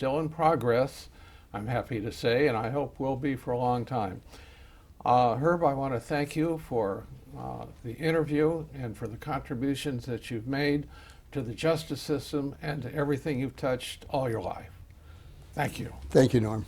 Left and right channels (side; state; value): both; identical; correlation 1.00